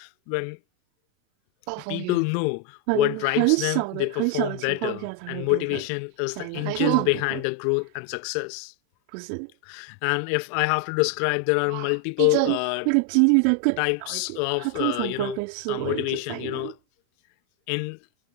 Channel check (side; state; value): both; different; correlation 0.01